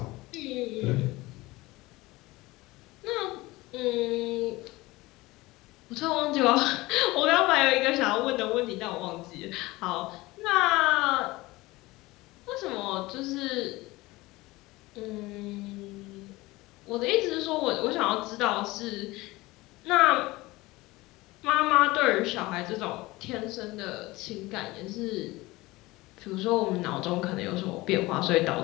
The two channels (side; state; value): right; quieter; 20.4 dB